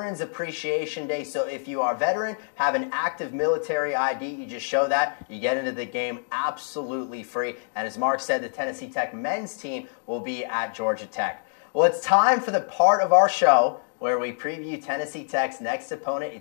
Appreciation Day, so if you are a veteran, have an active military ID, you just show that, you get into the game absolutely free. And as Mark said, the Tennessee Tech men's team will be at Georgia Tech. Well, it's time for the part of our show where we preview Tennessee Tech's next opponent.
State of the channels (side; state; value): right; silent; digital silence